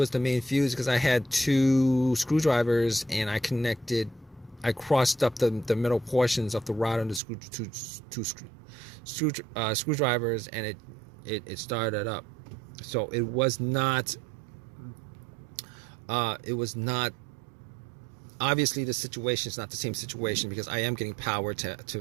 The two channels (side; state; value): left; drops out; at 7.2 s